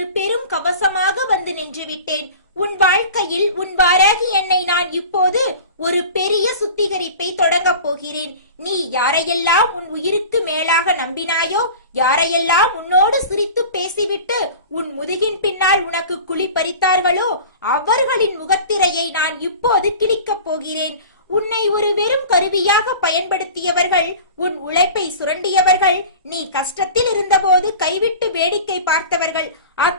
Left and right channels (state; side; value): inverted; both; correlation -0.38